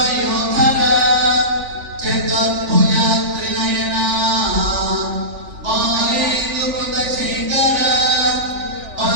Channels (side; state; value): left; late; 3.4 ms